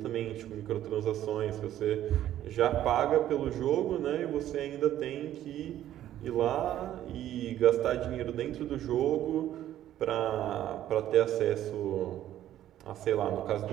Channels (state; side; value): quieter; left; 12.2 dB